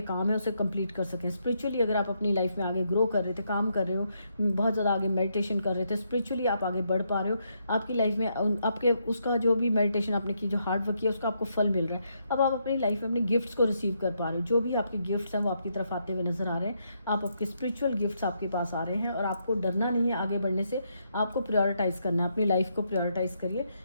काम है उसे कंप्लीट कर सकें। स्पिरिचुअली अगर आप अपनी लाइफ में आगे ग्रो कर रहे थे, काम कर रहे हो, बहुत ज़्यादा आगे मेडिटेशन कर रहे थे, स्पिरिचुअली आप आगे बढ़ पा रहे हो, आपकी लाइफ में आपके उसका जो भी मेडिटेशन आपने की, जो हार्ड वर्क किया, उसका आपको फल मिल रहा है। अब आप अपनी लाइफ में अपने गिफ्ट्स को रिसीव कर पा रहे हो, जो भी आपके गिफ्ट्स हैं वो आपकी तरफ आते हुए नजर आ रहे हैं। आपके स्पिरिचुअल गिफ्ट्स आपके पास आ रहे हैं और आपको डरना नहीं है आगे बढ़ने से, आपको प्रायोरिटाइज करना है, अपनी लाइफ को प्रायोरिटाइज करिए।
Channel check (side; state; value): both; inverted; correlation -0.78